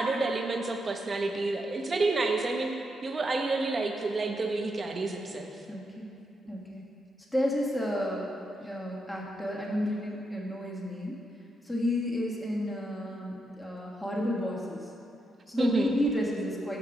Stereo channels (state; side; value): normal; both; correlation 0.83